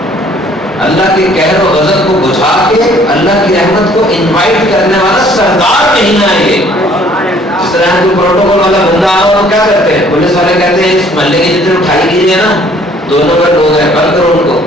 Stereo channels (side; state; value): both; normal; correlation 0.58